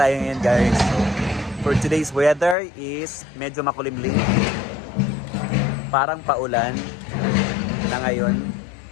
ngayon guys. So, for today's weather is medyo makulimlim. Parang paulan na ngayon.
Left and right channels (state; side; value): drops out; right; at 2.6 s